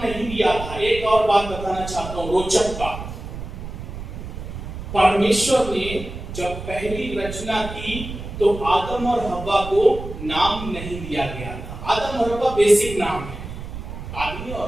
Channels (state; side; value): noise; right; rumble, 9 dB below the sound